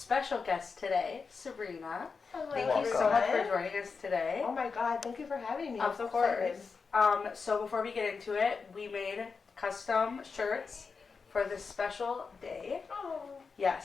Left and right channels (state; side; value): quieter; right; 5.0 dB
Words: guest today, Sabrina. Hello. Thank you so much for joining us today. Oh my God, thank you for having me. Of course. So before we get into it, we made custom shirts for this special day. Oh.